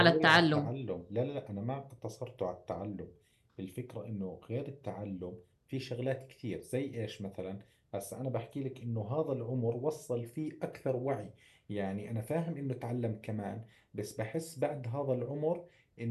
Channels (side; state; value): both; identical; correlation 1.00